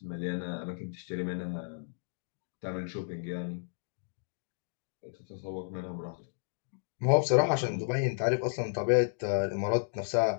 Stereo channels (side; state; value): right; silent; digital silence